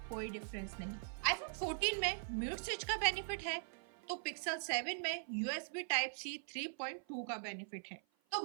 कोई डिफरेंस नहीं। आईफोन 14 में म्यूट स्विच का बेनिफिट है तो पिक्सल 7 में USB Type-C 3.2 का बेनिफिट है। तो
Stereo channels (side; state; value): left; silent; 50 dB below the other